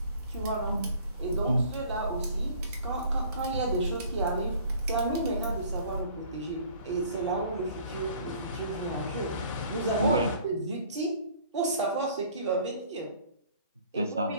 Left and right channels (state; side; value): inverted; both; correlation -0.53